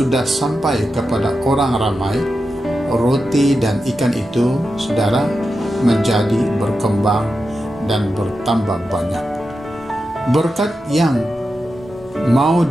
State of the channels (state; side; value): normal; both; correlation 0.90